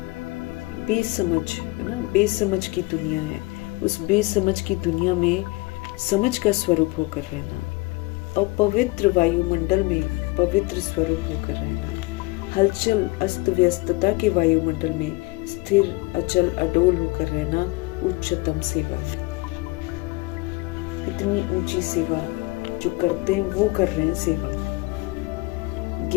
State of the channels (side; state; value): right; quieter; 24.0 dB